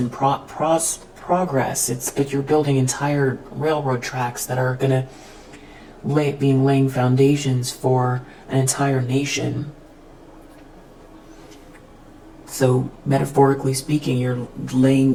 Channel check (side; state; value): both; identical; correlation 1.00